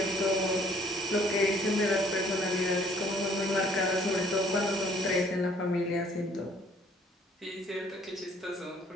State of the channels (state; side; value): normal; both; correlation 0.60